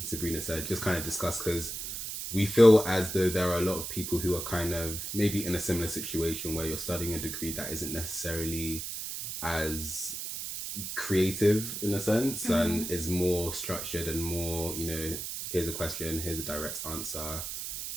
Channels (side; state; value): right; noise; hiss, 6 dB below the sound